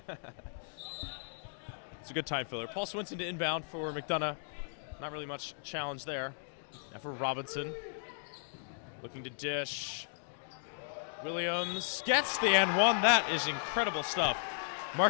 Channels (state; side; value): silent; right; digital silence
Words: It's a good time filler. Paul Swinson to inbound for McDonogh. Not really much challenge there. Now for Robinson. Looking to dish. Williams gets the and 1. That is incredible stuff.